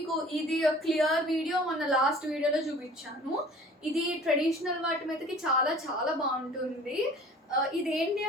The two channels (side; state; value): both; normal; correlation 0.47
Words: ఇది క్లియర్ వీడియో మొన్న లాస్ట్ వీడియోలో చూపించాను. ఇది ట్రెడిషనల్ వాటి మీదకి చాలా బాగుంటుంది. ఇదేంటి